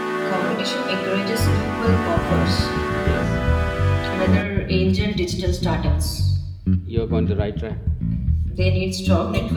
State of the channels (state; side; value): identical; both; correlation 1.00